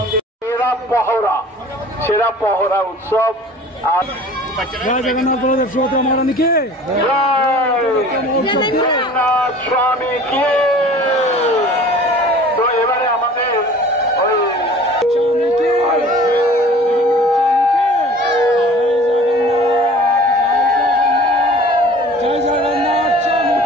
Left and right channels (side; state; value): both; normal; correlation 0.46